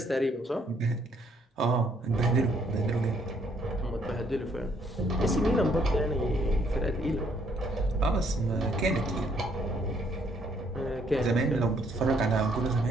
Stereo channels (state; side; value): normal; both; correlation 0.68